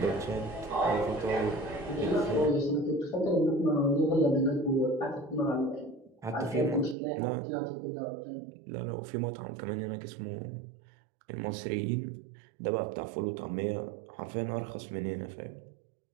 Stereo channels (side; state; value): left; drops out; at 7.0 s